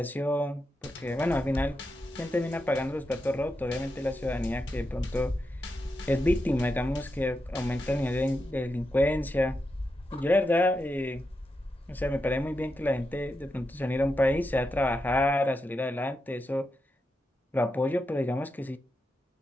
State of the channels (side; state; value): both; normal; correlation 0.87